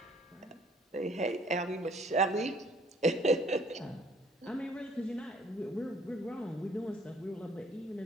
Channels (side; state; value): both; normal; correlation 0.59